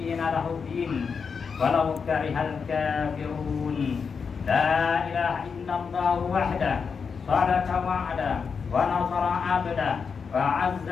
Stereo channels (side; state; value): right; quieter; 5.8 dB